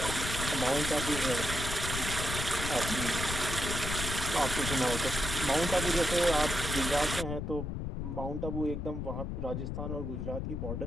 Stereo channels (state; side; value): noise; left; rumble, 3 dB below the sound